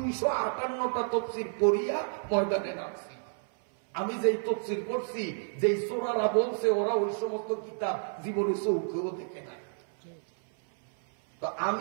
তাফসীর পড়িয়া ময়দানে নামছি। আমি যেই তাফসীর পড়ছি, যেই সূরারা বলছে, ওরা ওই সমস্ত কিতাব জীবনে চোখেও দেখে নাই। তো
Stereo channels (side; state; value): left; silent; 58 dB below the other